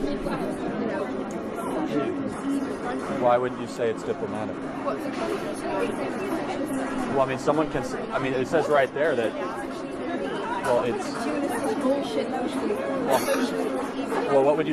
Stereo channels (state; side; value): identical; both; correlation 1.00